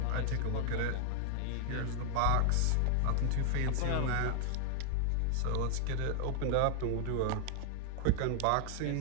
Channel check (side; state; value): both; different; correlation 0.00